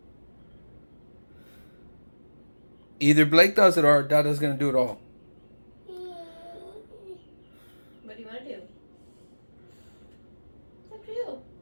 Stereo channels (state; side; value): inverted; both; correlation -1.00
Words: Either Blake does it or Dada's gonna do it all. What do you want to do? It's up to you.